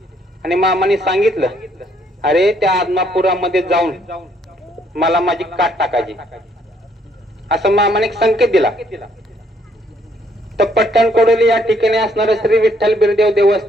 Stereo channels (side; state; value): both; normal; correlation 0.68